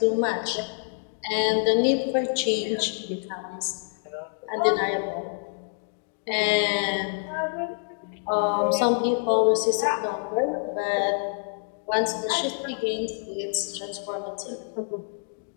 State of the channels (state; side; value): silent; right; digital silence